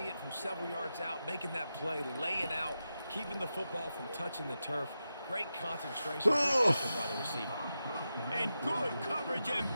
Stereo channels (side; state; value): both; inverted; correlation -0.90